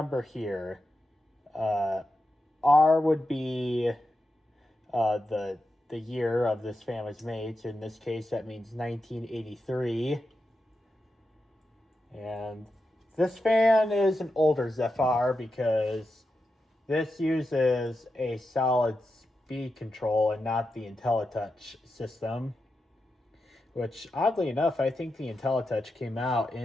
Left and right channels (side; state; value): both; normal; correlation 0.89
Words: here, R would be the year of this fan was made. So in this case, that means 1983. And this fan is an older Zephyr because this uses a solid speed control and not the IntelliTouch system, which oddly enough, I think the IntelliTouch came out